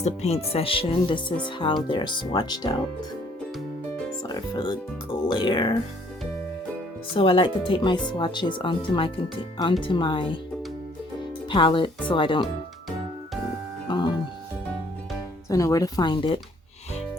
the paint session. This is how they're swatched out. Sorry for the glare. So I like to take my swatches onto my palette so I don't so I know where to find it.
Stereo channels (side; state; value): both; normal; correlation 0.62